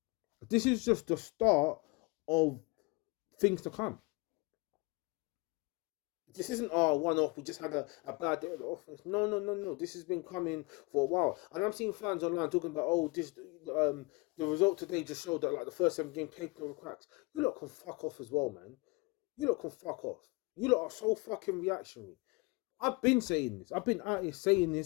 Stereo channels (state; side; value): quieter; right; 27.4 dB